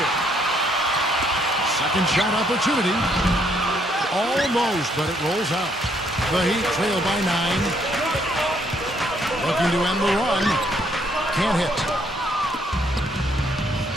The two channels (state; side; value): normal; both; correlation 0.70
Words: Second shot opportunity. Almost, but it rolls out. The Heat trail by 9. Looking to end the run. Can't hit.